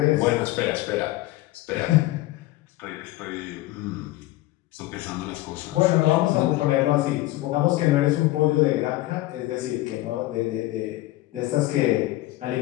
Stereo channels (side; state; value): right; quieter; 17.6 dB